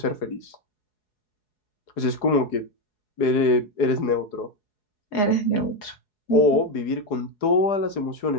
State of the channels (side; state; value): right; late; 4.7 ms